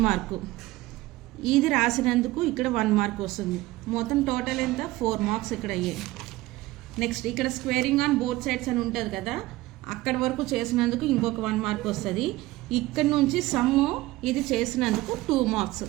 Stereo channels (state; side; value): quieter; left; 18.3 dB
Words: మార్కు. ఇది రాసినందుకు ఇక్కడ 1 మార్క్ వస్తుంది. మొత్తం టోటల్ ఎంత 4 మార్క్స్ ఇక్కడ అయ్యాయి. నెక్స్ట్ ఇక్కడ స్క్వేరింగ్ ఆన్ బోత్ సైడ్స్ అని ఉంటుంది కదా, అక్కడి వరకు చేసినందుకు ఇంకొక 1 మార్క్ వస్తుంది. ఇక్కడ నుంచి సమ్ము ఇది చేసినందుకు 2 మార్క్స్.